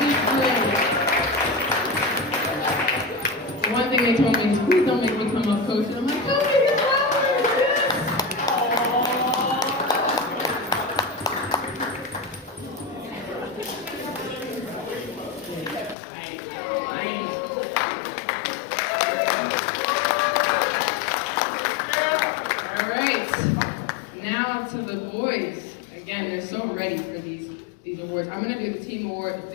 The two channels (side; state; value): right; drops out; at 16.0 s